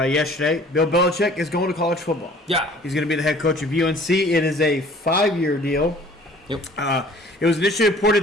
Bill Belichick is going to college football. Yeah, he's going to be the head coach of UNC. It is a 5-year deal. Yep. It was initially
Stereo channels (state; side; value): normal; both; correlation 0.51